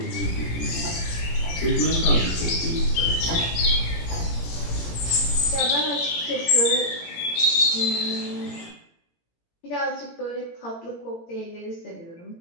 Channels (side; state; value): right; late; 17 ms